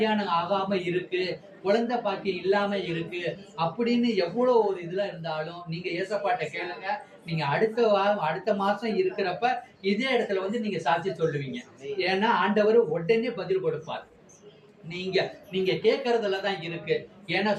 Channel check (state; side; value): identical; both; correlation 1.00